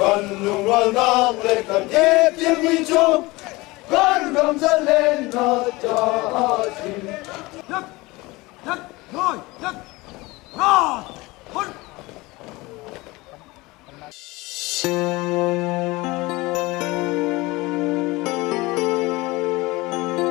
lùng loan nang lệ cần thiết tiếng mi chung, con gầm dẫn lên nó cho xin. Nhất, nhất, rồi, nhất, rồi, hôn.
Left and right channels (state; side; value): quieter; right; 22.1 dB